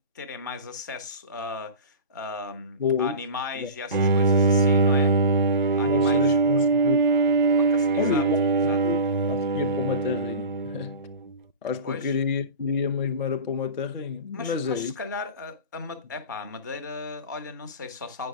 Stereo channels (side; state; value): both; inverted; correlation -0.33